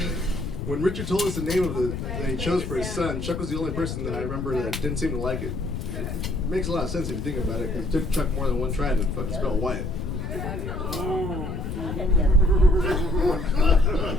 When Richard told us the name of that he chose for his son, Chuck was the only person that I remember that didn't seem to like it. It makes a lot of sense if you think about it, because it took Chuck more than one try to fucking spell Wyatt.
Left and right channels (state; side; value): noise; left; rumble, 5 dB below the sound